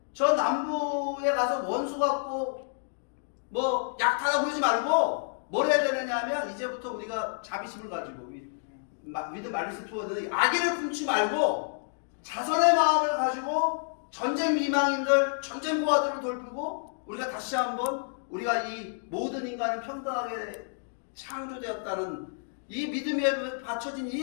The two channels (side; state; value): right; silent; digital silence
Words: 저 남부에 가서 원수 갖고 뭐 약탈하고 그러지 말고 뭘 해야 되느냐 하면 이제부터 우리가 자비심을 가지고 위드 말리스 투어는 악의를 품지 말고 자선의 마음을 가지고 전쟁 미망인들, 전쟁 고아들을 돌보고 우리가 다시 한번 우리가 이 모든 인간은 평등하게 창조되었다는 이 믿음에 받쳐진